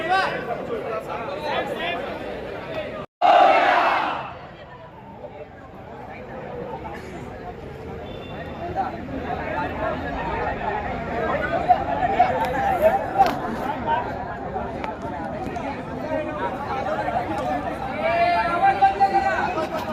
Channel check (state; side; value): identical; both; correlation 1.00